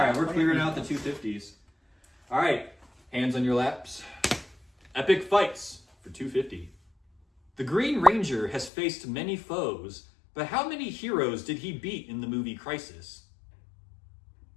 we're clearing out the 250s. All right, hands on your laps. Epic fights for 250. The Green Ranger has faced many foes, but how many heroes did he beat in the movie Crisis?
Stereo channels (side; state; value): right; drops out; at 8.7 s